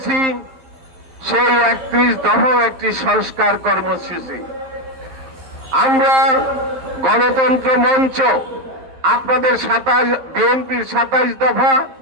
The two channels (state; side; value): late; left; 11 ms